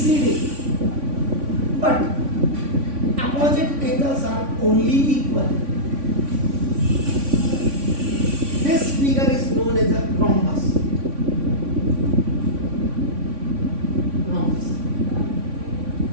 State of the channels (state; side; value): late; left; 3.5 ms